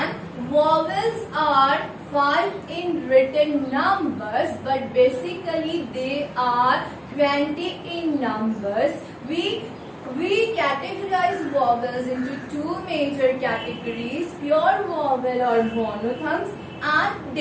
vowels are 5 in written numbers, but basically they are 20 in numbers. We categorize vowels into two major categories: pure vowel or monophthongs and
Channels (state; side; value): identical; both; correlation 1.00